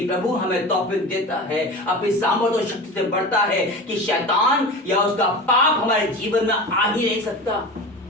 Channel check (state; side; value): normal; both; correlation 0.31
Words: प्रभु हमें तौफीक देता है, अपनी सामर्थ और शक्ति से बढ़ता है कि शैतान या उसका पाप हमारे जीवन में आ ही नहीं सकता